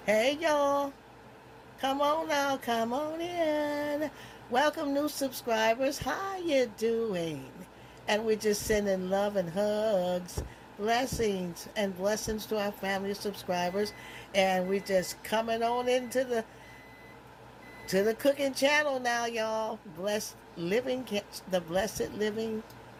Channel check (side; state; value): both; identical; correlation 1.00